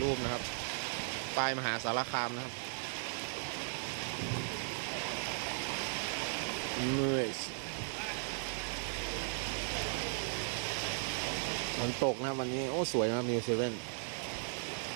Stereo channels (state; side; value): silent; left; digital silence